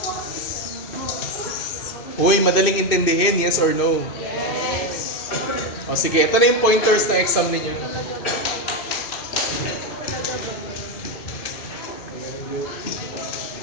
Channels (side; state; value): right; late; 2.6 ms